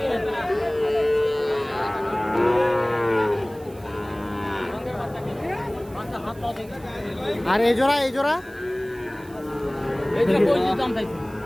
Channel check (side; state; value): right; noise; hiss, 25 dB below the sound